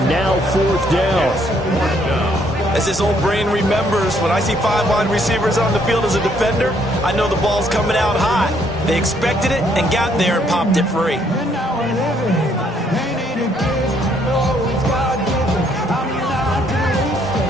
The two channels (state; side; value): normal; both; correlation 0.68